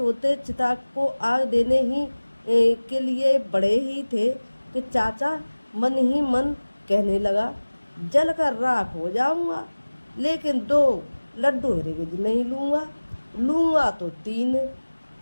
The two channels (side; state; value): both; inverted; correlation -1.00